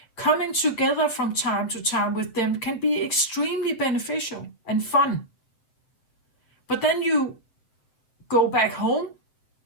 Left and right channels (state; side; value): late; right; 7.8 ms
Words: Coming together from time to time with them can be extremely beneficial and fun. But then you go back home,